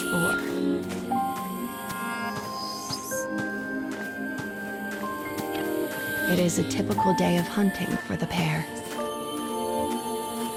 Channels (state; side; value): identical; both; correlation 1.00